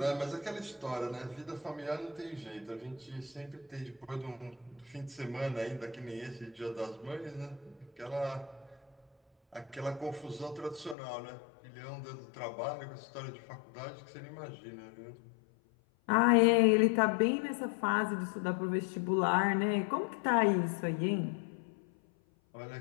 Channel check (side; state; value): right; drops out; at 11.0 s